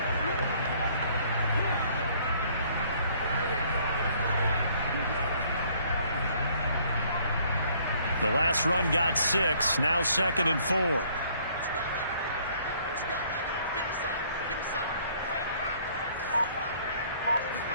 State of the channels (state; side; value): inverted; both; correlation -0.61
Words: The last run got 6. Now 2nd and 4.